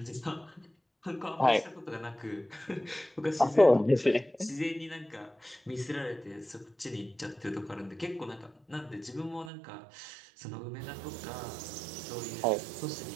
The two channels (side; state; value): left; drops out; at 9.5 s